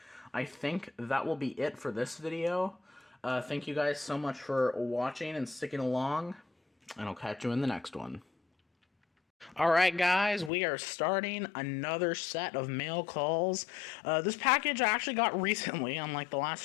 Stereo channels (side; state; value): right; drops out; at 10.5 s